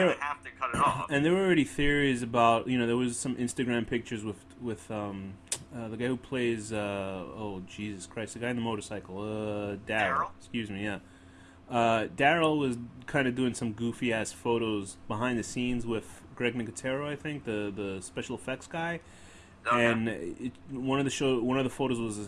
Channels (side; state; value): both; identical; correlation 1.00